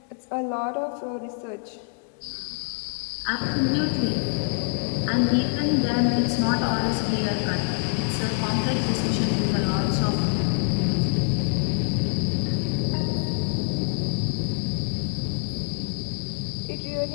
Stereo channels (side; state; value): right; silent; 58 dB below the other